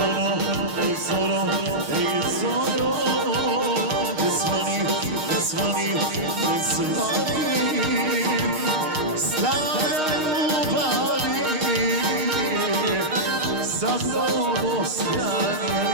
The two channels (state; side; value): late; left; 6.4 ms